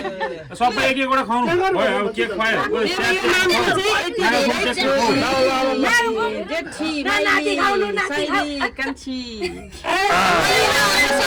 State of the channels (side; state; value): both; identical; correlation 1.00